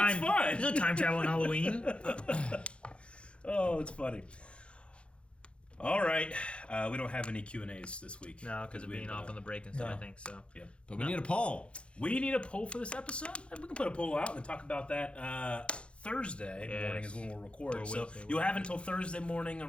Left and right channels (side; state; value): right; late; 0.058 ms